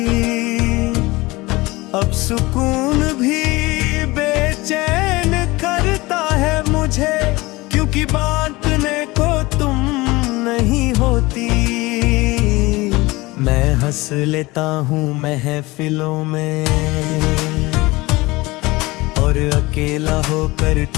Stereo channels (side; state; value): right; quieter; 21.6 dB